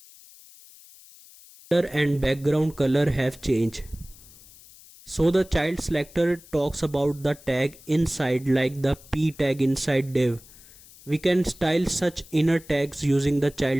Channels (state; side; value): noise; left; hiss, 22 dB below the sound